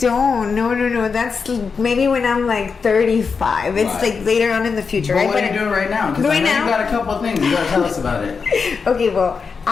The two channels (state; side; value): quieter; right; 5.4 dB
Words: No. That's maybe when I'm like 35. It's like later on in the future, but right? What are you doing right now? Because I know you got a couple of things. You gotta tell us about it. Okay, well,